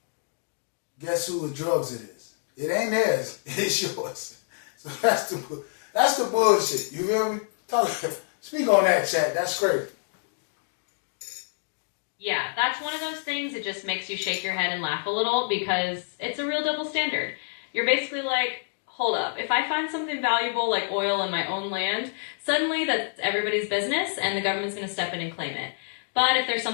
guess who the drugs it is? It ain't theirs. It's yours. So that's the bullshit. You feel me? Speak on that, chat. That's crazy. Yeah, that's one of those things that just makes you shake your head and laugh a little because it's a real double standard. You're basically like, hold up, if I find something valuable like oil in my own land, suddenly that's everybody's business and the government's going to step in and claim it. But if there's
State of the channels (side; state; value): right; silent; digital silence